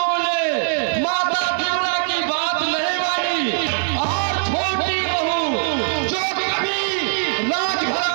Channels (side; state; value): left; silent; 59 dB below the other